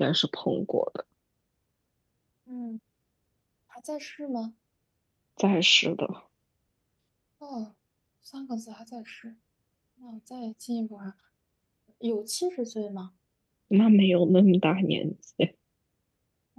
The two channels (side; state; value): both; identical; correlation 1.00